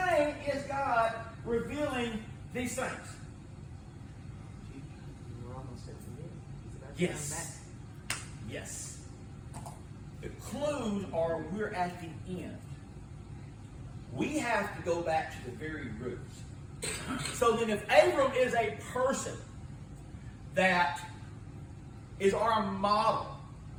is God revealing these things? Yes. Yes. The clues are we're at the end. We have to go back to the very roots. So then if Abram is a person that is our model,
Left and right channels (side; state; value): both; identical; correlation 1.00